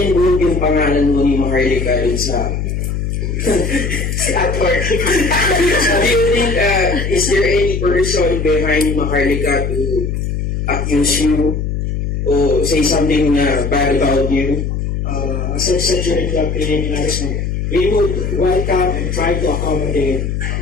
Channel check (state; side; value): noise; left; hum, 2 dB below the sound